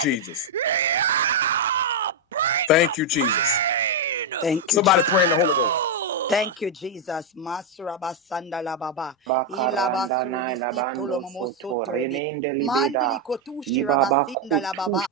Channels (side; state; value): both; normal; correlation 0.01